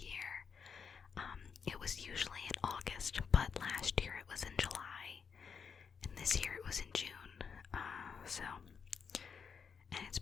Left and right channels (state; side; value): quieter; right; 6.3 dB